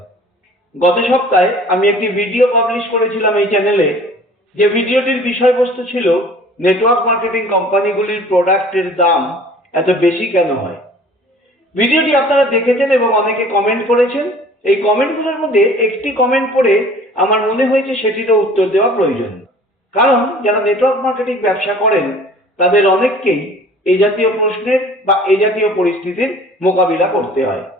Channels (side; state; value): both; normal; correlation 0.48